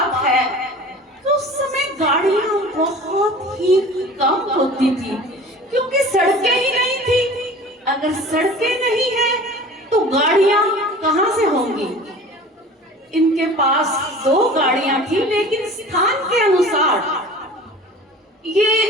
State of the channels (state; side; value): normal; both; correlation 0.41